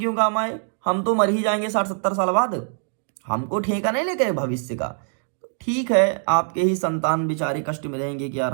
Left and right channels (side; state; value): left; silent; digital silence